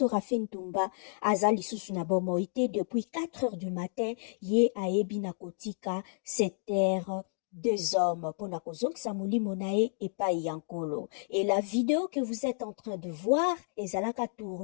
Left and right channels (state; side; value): silent; right; digital silence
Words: Rafin Ntumba aza lisusu na bomoite depuis 4 heures du matin ye ayebi na kotika cette terre deux hommes pour na kozongisa molimo na ye epai ya nkolo. Et la vidéo que vous êtes en train de voir ezalaka